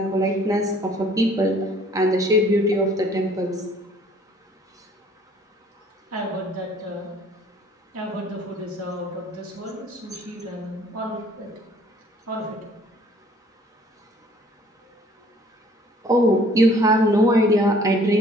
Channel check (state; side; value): normal; both; correlation 0.56